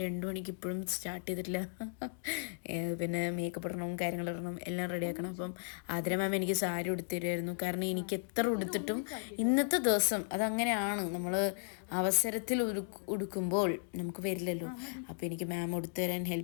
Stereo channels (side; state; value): right; silent; digital silence